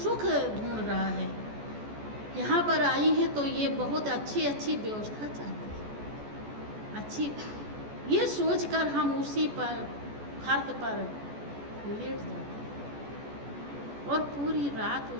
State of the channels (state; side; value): late; left; 14 ms